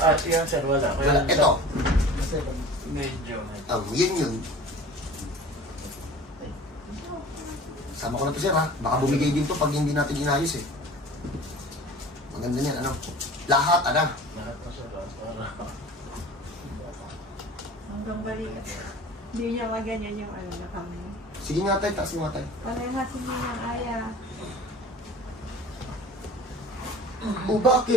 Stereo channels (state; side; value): normal; both; correlation 0.41